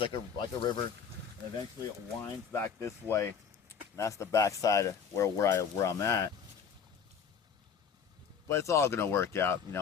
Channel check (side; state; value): right; quieter; 6.8 dB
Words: like a river, and eventually it winds back this way. And that's the backside of where I'm at. But it's all gonna work out. You